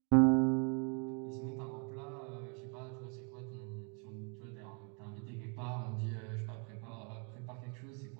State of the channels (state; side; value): quieter; left; 37.8 dB